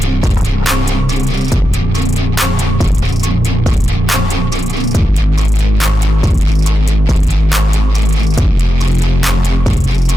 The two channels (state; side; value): normal; both; correlation 0.88